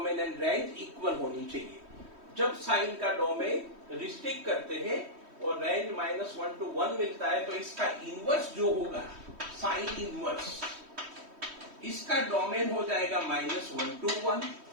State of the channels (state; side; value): late; left; 3.1 ms